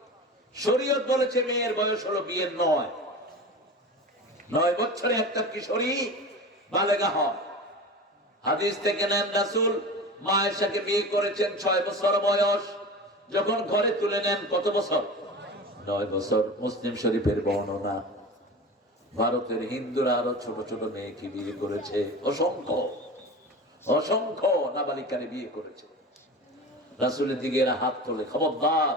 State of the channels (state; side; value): normal; both; correlation 0.32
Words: শরীয়ত বলেছে মেয়ের বয়স হলো বিয়ের 9 বছরে একটা কিশোরী বালেগা হয়। হাদিস থেকে নেন, রাসূল মা আয়েশাকে বিয়ে করেছেন 6 বছর বয়স। যখন ঘরে তুলে নেন কত বছর? 9 বছর। মুসলিম শরীফের বর্ণনা। ভারতের হিন্দুরা আরো ছোট ছোট মেয়েকে বিয়ে করেছে, অসংখ্য অসংখ্য নাবালিকারে বিয়ে করেছে। রাসূলের দিকে এরা হাত তোলে। খবরদার,